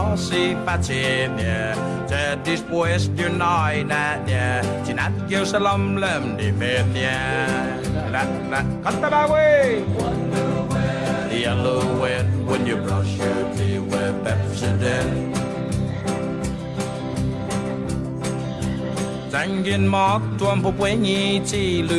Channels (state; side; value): identical; both; correlation 1.00